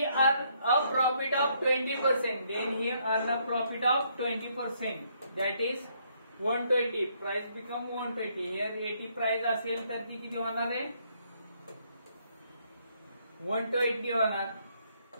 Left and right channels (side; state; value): both; inverted; correlation -0.70